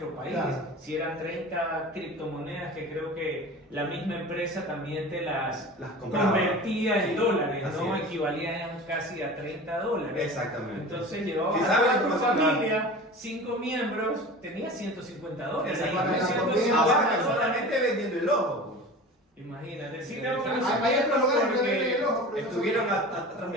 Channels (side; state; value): both; normal; correlation 0.35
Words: país. Claro. Si eran 30 criptomonedas que creo que la misma empresa también te las compraba. convertía en Sí, dólares, así ¿no? es. Equivalían casi a $30. Exactamente. Entonces llevabas Si a sabes toda tu información, familia, 5 miembros, tenía $150. Exacto. Y Para la 150 comida, Ahora dólares. solamente vendiendo el ojo. Imagínate, sí Hay- tengo que Hay otros lugares que porque venden el ojo, pero no Estuvieron son- atrás